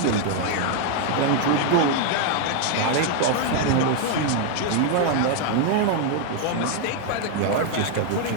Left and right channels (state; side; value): different; both; correlation 0.00